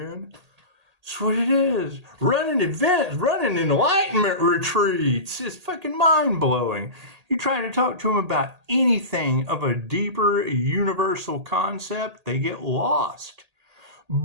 That's what it is. Running events, running enlightenment retreats. It's fucking mind-blowing. You try to talk to them about anything of a deeper universal concept, they get lost.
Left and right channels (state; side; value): late; left; 1.8 ms